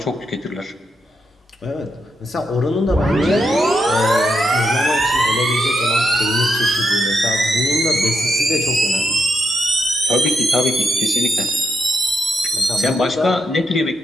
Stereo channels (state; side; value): normal; both; correlation 0.82